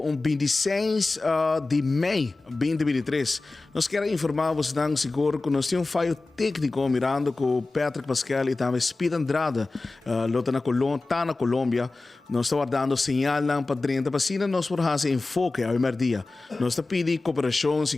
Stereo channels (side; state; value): right; quieter; 3.4 dB